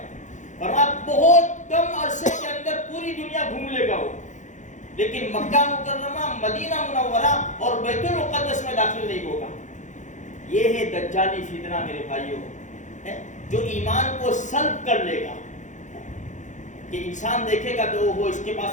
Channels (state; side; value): late; right; 0.35 ms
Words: فرمایا بہت کم عرصے کے اندر پوری دنیا گھوم لے گا وہ، لیکن مکہ مکرمہ، مدینہ منورہ اور بیت المقدس میں داخل نہیں ہوگا۔ یہ ہے دجالی فتنہ میرے بھائیوں، جو ایمان کو سلب کر لے گا، کہ انسان دیکھے گا تو وہ اس کے